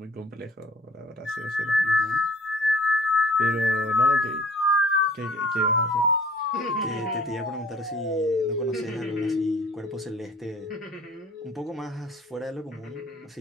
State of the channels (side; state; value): both; normal; correlation 0.52